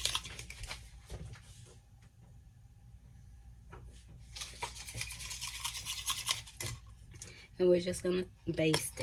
And we're just gonna baste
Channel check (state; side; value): identical; both; correlation 1.00